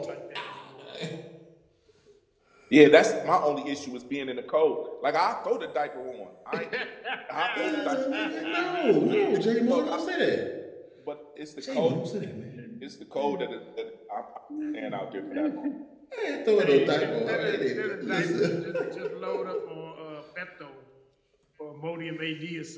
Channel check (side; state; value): both; identical; correlation 1.00